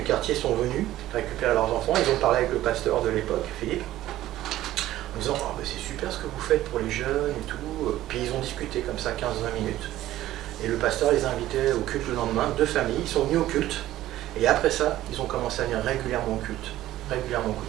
quartier sont venus récupérer leurs enfants. Ils ont parlé avec le pasteur de l'époque, Philippe, en disant oh, c'est super ce que vous faites pour les jeunes et tout. Puis ils ont discuté comme ça 15-20 minutes. Et le pasteur les a invités au culte le lendemain, 2 familles, ils sont venus au culte. Et après ça, ils ont commencé à venir régulièrement au culte.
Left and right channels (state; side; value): quieter; left; 14.5 dB